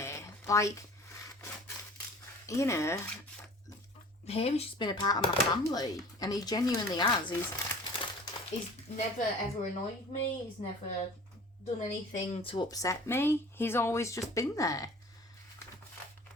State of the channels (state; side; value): normal; both; correlation 0.45